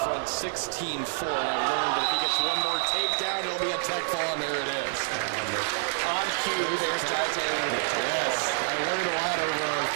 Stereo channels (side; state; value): left; silent; digital silence